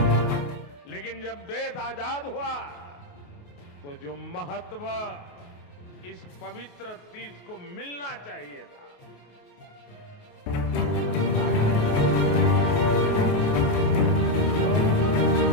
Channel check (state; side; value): late; right; 28 ms